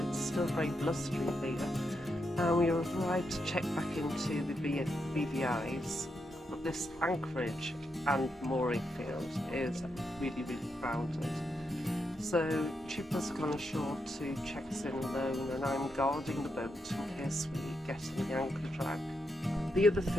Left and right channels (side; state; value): both; normal; correlation 0.83